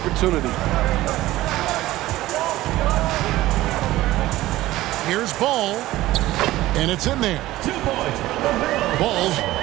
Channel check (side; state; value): left; quieter; 16.5 dB